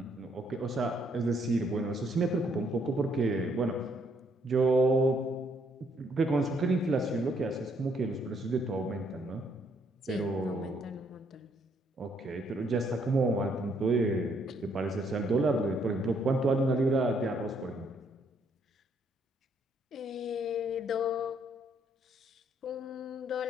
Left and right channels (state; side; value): normal; both; correlation 0.70